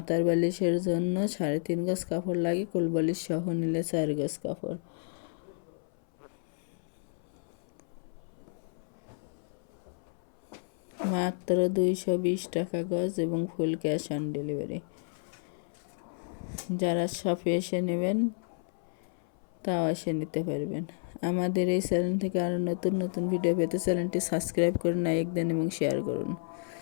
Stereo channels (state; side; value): silent; right; 57 dB below the other